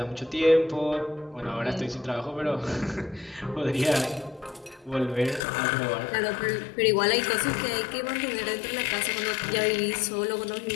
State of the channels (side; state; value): right; drops out; at 5.4 s